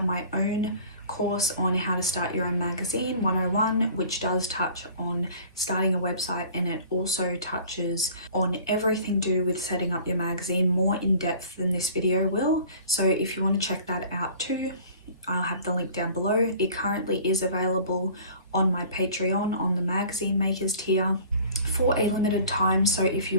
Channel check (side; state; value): both; inverted; correlation -0.47